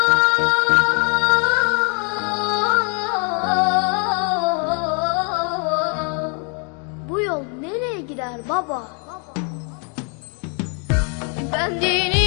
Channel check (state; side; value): quieter; right; 38.8 dB